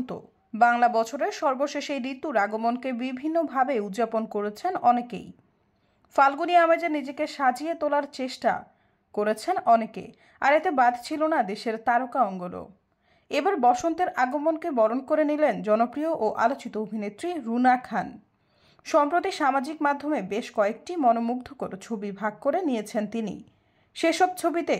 বাংলা বছরের সর্বশেষ এই ঋতুর আগমনকে বিভিন্নভাবে উদযাপন করেছেন অনেকেই। ফাল্গুনী আমেজে নিজেকে সাজিয়ে তোলার চেষ্টা করেছেন অনেকে, আর এতে বাদ ছিল না দেশের তারকা অঙ্গনও। এবার বসন্তের আগমনকে বরণ করে নিলেন জনপ্রিয় ও আলোচিত অভিনেত্রী রুনা খান। সম্প্রতি সামাজিক মাধ্যমে বেশ কয়েকটি মনোমুগ্ধকর ছবি ভাগ করে নিয়েছেন তিনি। সেসব ছবিতে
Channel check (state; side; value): identical; both; correlation 1.00